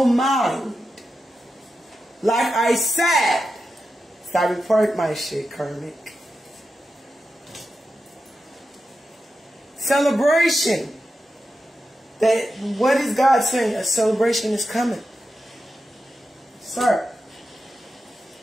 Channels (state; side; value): normal; both; correlation 0.90